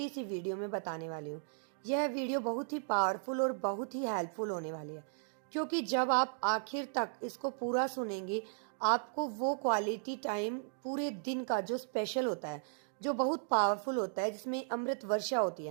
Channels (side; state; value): left; silent; digital silence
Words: सी वीडियो में बताने वाली हूँ। यह वीडियो बहुत ही पावरफुल और बहुत ही हेल्पफुल होने वाली है, क्योंकि जब आप आखिर तक इसको पूरा सुनेंगे, आपको वो क्वालिटी टाइम पूरे दिन का जो स्पेशल होता है, जो बहुत पावरफुल होता है, जिसमें अमृत वर्षा होती